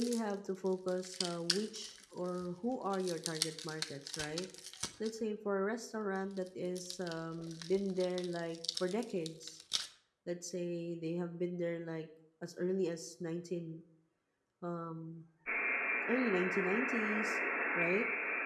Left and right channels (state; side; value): identical; both; correlation 1.00